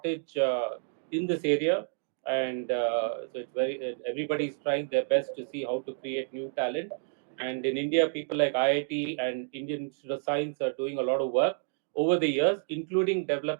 in this area, and so it's very, everybody is trying their best to see how to create new talent. And in India, people like IIT and Indian Institute of Science are doing a lot of work over the years, including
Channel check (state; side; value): silent; left; digital silence